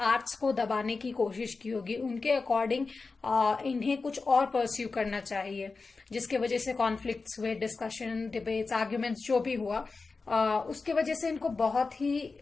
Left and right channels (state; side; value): quieter; right; 4.1 dB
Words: आर्ट्स को दबाने की कोशिश की होगी। उनके अकॉर्डिंग इन्हें कुछ और परस्यू करना चाहिए, जिसके वजह से कॉन्फ्लिक्ट्स हुए, डिस्कशन, डिबेट्स, आर्ग्यूमेंट्स जो भी हुआ, उसके वजह से इनको बहुत ही